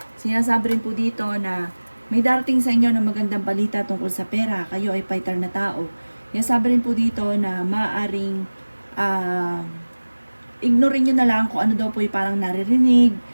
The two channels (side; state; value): both; inverted; correlation -1.00